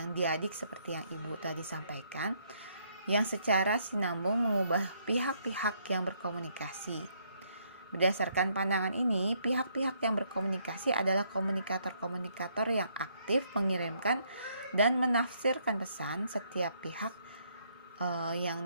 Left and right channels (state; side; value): inverted; both; correlation -0.71